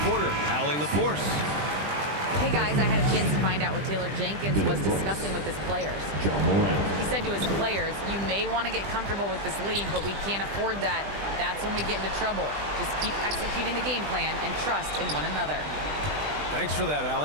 Allie LaForce. Hey guys, I had a chance to find out what Taylor Jenkins was discussing with his players. He said to his players, you may want to get comfortable with this lead, but we can't afford that. That's when we get into trouble. Just keep executing the game plan and trust in one another. Thanks for that,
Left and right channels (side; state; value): left; late; 20 ms